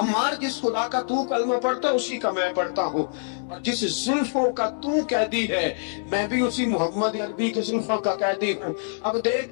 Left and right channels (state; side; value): silent; right; digital silence